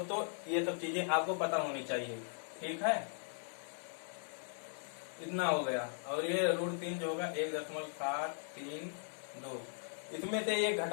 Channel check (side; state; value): right; silent; 52 dB below the other